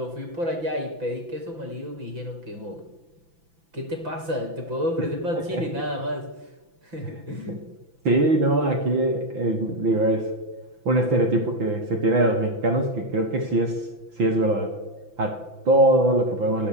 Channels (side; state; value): left; late; 6.0 ms